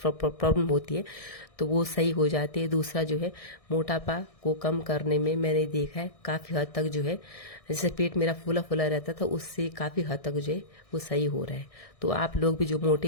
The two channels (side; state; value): right; late; 1.6 ms